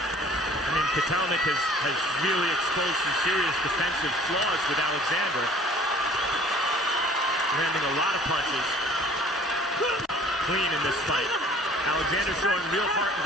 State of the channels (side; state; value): both; normal; correlation 0.51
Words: mean, Kotelnik has really exposed some serious defensive flaws with Alexander. Landing a lot of punches. Clean in this fight. Alexander showing real heart